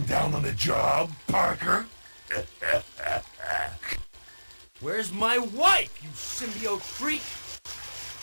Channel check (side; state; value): both; inverted; correlation -1.00